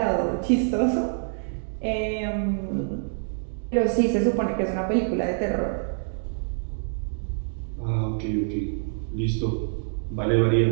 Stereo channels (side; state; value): left; silent; digital silence